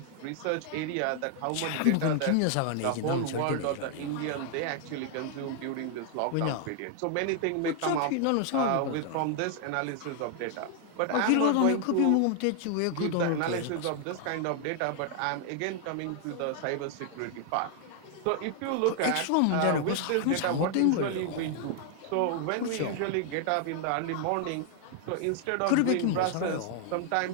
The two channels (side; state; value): both; different; correlation 0.00